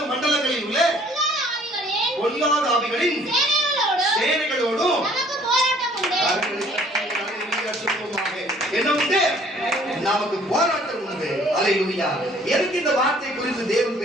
மண்டலங்களில் உள்ள பொல்லாத ஆவிகளின் சேனைகளோடும் என்ன உண்டு? நமக்கு போராட்டம் உண்டு. அல்லேலூயா. எதற்கு இந்த வார்த்தை குறித்து தேவன்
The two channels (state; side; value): normal; both; correlation 0.57